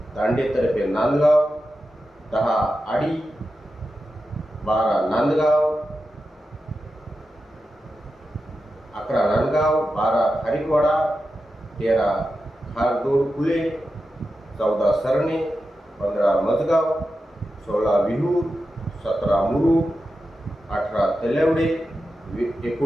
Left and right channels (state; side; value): normal; both; correlation 0.90